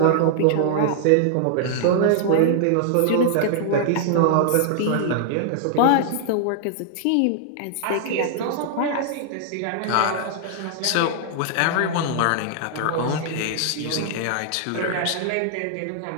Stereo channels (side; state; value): both; different; correlation -0.01